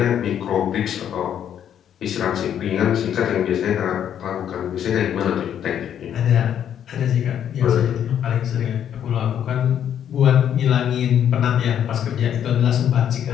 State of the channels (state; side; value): quieter; right; 9.5 dB